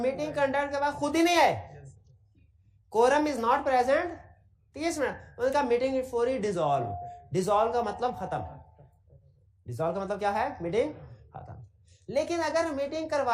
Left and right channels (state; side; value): identical; both; correlation 1.00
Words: कंडक्ट के बाद खुद ही नहीं आए। Quorum is not present 30 minute, उनका meeting is for dissolve. Dissolve का मतलब खत्म, डिसॉल्व का मतलब क्या है? मीटिंग खत्म। लेकिन अगर मीटिंग